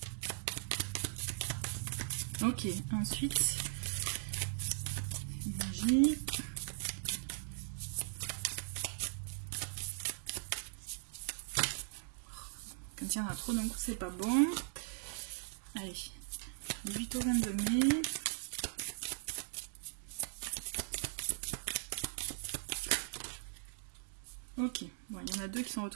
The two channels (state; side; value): silent; left; digital silence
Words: Ok, ensuite, énergie. Quand il y en a trop d'un coup, c'est pas bon. Allez, 18 au 22 mai. Ok, bon, il y en a deux qui sont